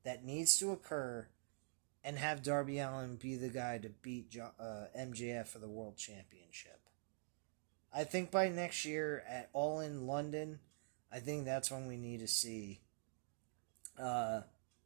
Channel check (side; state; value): left; silent; digital silence